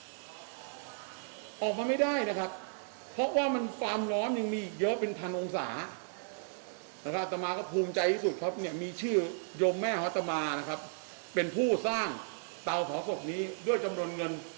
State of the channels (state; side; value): silent; left; digital silence